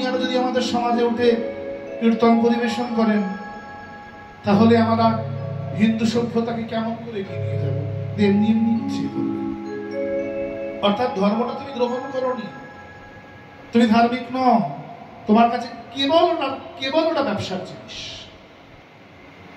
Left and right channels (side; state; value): both; identical; correlation 1.00